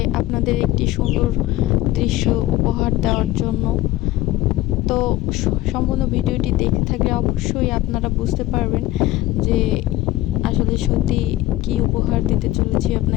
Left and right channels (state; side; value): quieter; right; 16.3 dB